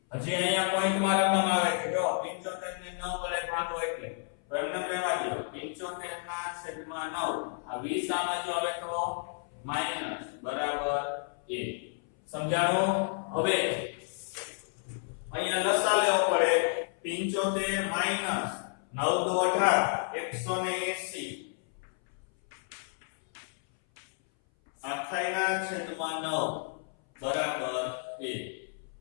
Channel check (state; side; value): silent; right; 57 dB below the other